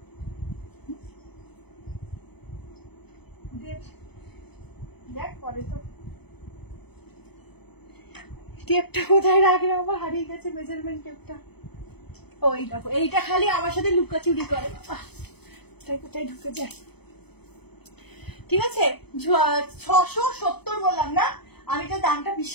দেখ পরে তো টেপটা কোথায় রাখলে, আমার হারিয়ে গেছে মেজারমেন্ট টেপটা। ওই দেখো, এইটা খালি আমার সাথে লুকাচুরি করে, তাই কোথায় ঢুকে যায়, ঠিক আছে? 670 বললাম না, আমি তো দামটা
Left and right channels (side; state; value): right; late; 0.98 ms